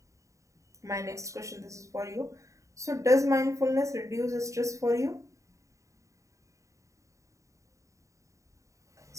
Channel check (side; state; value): left; late; 0.15 ms